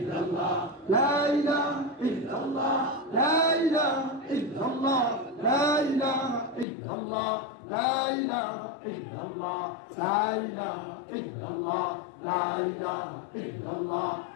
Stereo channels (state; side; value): drops out; right; at 6.7 s